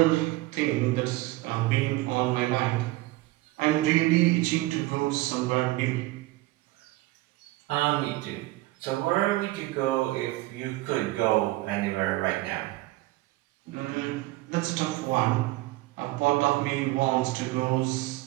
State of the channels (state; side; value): quieter; left; 19.1 dB